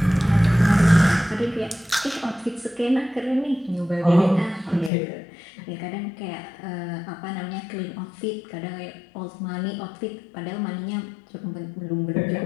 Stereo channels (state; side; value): drops out; right; at 4.9 s